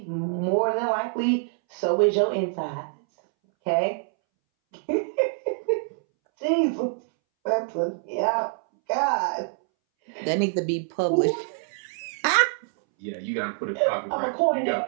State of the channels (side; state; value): left; silent; 61 dB below the other